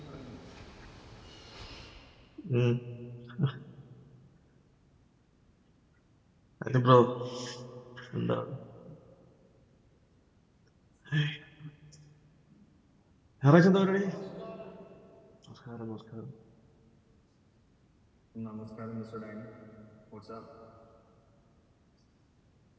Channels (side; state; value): both; identical; correlation 1.00